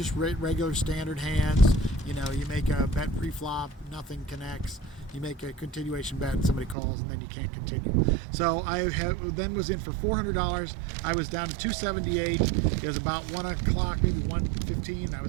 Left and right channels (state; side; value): drops out; left; at 6.8 s